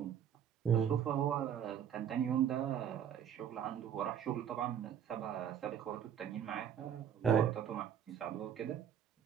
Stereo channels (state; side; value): quieter; left; 8.9 dB